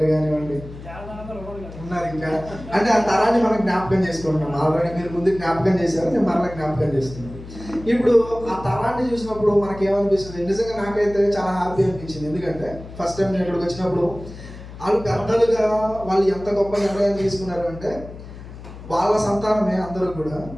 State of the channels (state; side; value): noise; left; hum, 14 dB below the sound